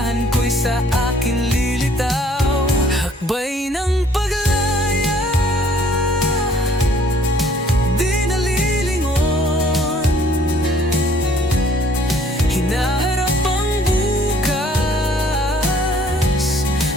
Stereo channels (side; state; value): both; normal; correlation 0.59